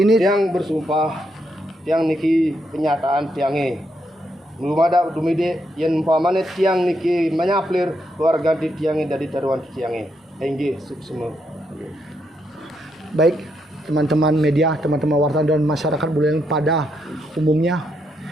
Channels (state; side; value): normal; both; correlation 0.79